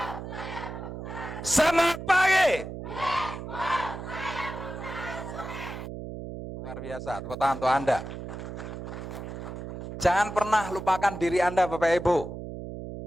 Semangat pagi. Luar biasa, tepuk tangan untuk Anda. Jangan pernah lupakan diri Anda, Bapak Ibu.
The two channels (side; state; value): right; noise; hum, 8 dB below the sound